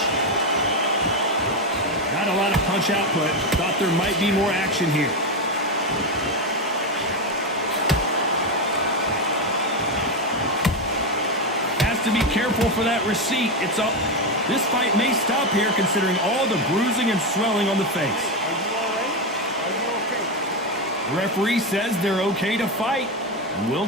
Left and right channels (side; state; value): both; normal; correlation 0.11